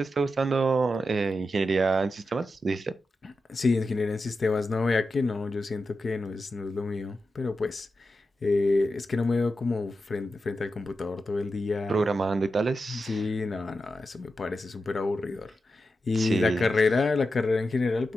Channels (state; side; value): normal; both; correlation 0.89